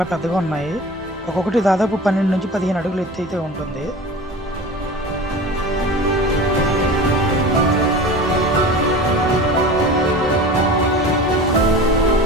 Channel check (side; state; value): both; normal; correlation 0.35